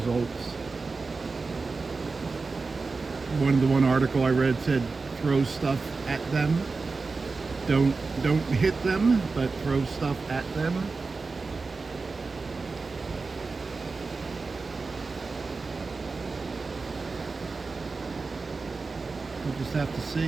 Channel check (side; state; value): left; quieter; 4.1 dB